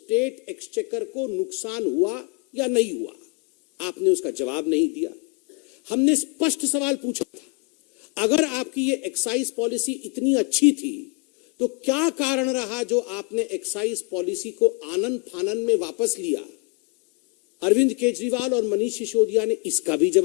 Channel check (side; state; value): right; quieter; 31.3 dB